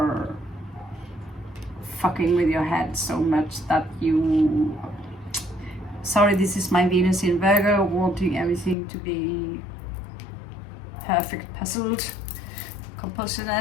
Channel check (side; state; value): right; drops out; at 8.8 s